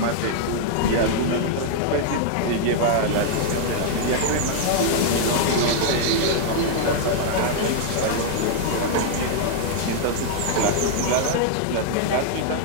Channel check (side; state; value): both; different; correlation -0.01